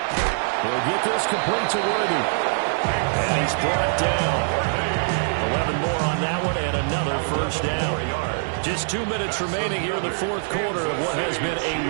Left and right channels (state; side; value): silent; left; digital silence